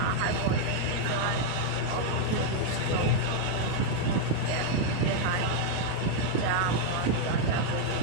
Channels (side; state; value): both; different; correlation 0.00